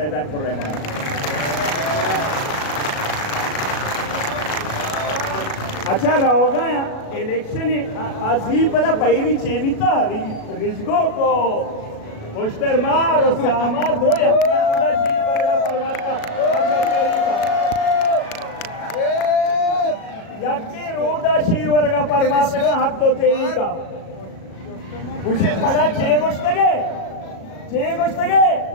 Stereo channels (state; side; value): late; right; 37 ms